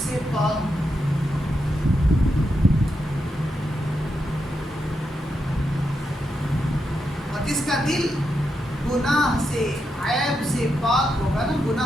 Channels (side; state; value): both; normal; correlation 0.84